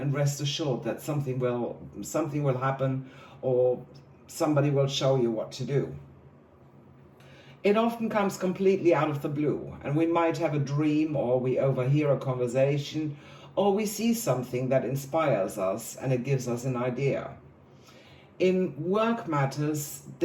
rest assured that something will happen, or somebody will show you what to do. It often comes completely out of the blue, and we might have a dream, or we overhear a conversation, or we see something that inspires us and it gives us an idea. In work matters,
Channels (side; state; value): both; identical; correlation 1.00